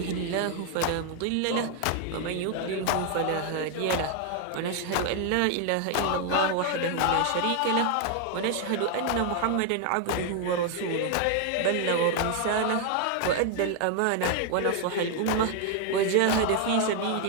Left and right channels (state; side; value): different; both; correlation 0.00